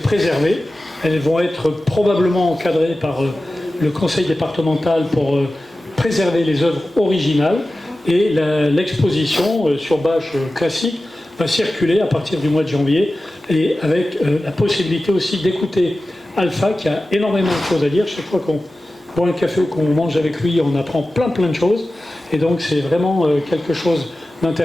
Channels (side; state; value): both; normal; correlation 0.95